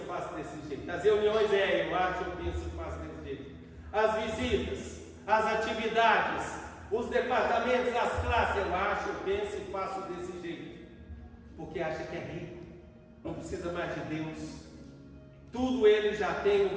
faço desse jeito. As reuniões é, eu acho, eu penso, eu faço desse jeito. As visitas, as atividades, os departamentos, as classes, eu acho, eu penso e faço desse jeito. Porque acha que é rico, não precisa mais de Deus. Tudo ele já tem, não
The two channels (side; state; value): both; identical; correlation 1.00